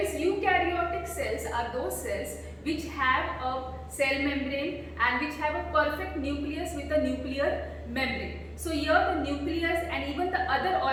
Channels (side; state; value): both; identical; correlation 1.00